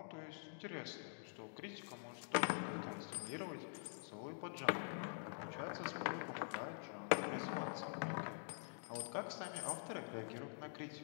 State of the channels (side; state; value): right; silent; digital silence